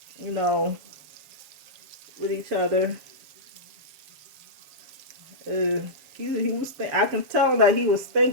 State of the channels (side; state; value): left; late; 7.3 ms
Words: you know, with each other. He was I can tell that he was